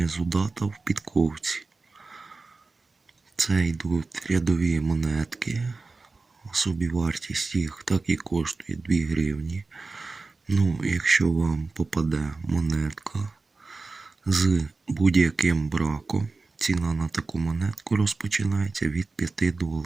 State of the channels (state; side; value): quieter; left; 3.8 dB